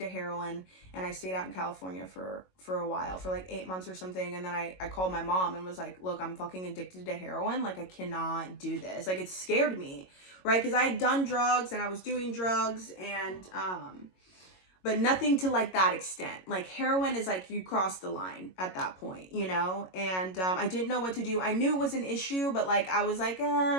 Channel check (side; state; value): right; late; 22 ms